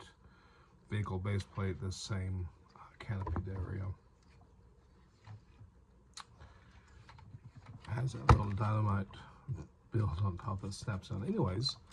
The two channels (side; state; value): both; identical; correlation 1.00